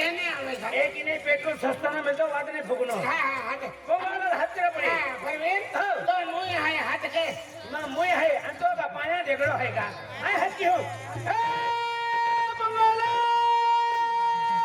नहीं आवे एक ही नहीं पेट्रोल सस्ता ना मिलता वाद नहीं फुकनो हाँ पंगो वाला हाथ तेरा पड़े परवीन तो मुई है हाथ के ना मुई है अंतो का पाया देखड़ो है का आई हाथ की हो ए पंगोला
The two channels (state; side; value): identical; both; correlation 1.00